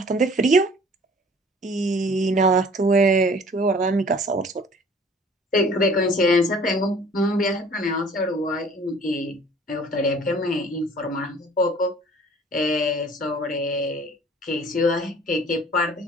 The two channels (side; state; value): both; normal; correlation 0.51